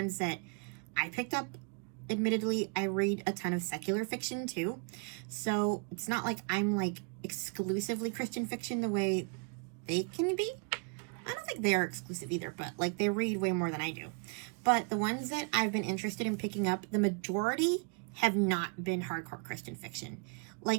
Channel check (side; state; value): left; quieter; 37.1 dB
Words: that I picked up. Admittedly, I read a ton of secular fiction too, so it's not like I'm exclusively Christian fiction the way they can be. I don't think they are exclusive either, but they read way more than I do. But the ones that I've been interested in picking up, the majority have not been hardcore Christian fiction.